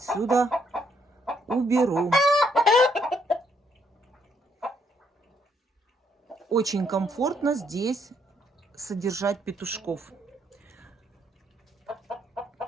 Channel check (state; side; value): normal; both; correlation 0.72